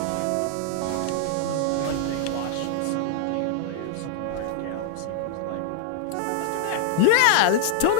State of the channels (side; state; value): both; different; correlation -0.01